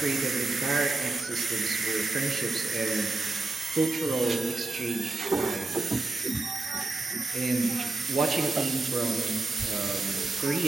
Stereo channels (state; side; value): quieter; left; 3.0 dB